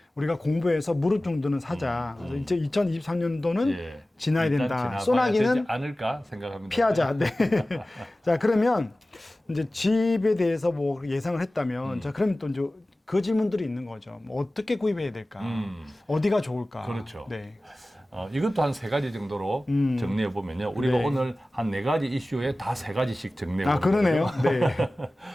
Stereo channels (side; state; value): both; normal; correlation 0.97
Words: 우리가 공부해서 무릎 정도는 사자. 그래서 이제 2023년도는 예. 지나야 일단 된다. 지나가야 소나기는 되지 않을까 생각합니다. 피하자. 네. 자, 그러면 이제 집에 대해서 뭐 예상을 했다면 자, 그러면 또 이제 그 질문들이 있는 거죠. 뭐 어떻게 구입해야 될까? 어디가 좋을까? 그렇죠. 네. 이것도 한 세 가지 정도로 정리해 보면요. 우리가 네. 오늘 한 네 가지 이슈에 다 세 가지씩 정리해 아, 보는 그러네요. 거예요.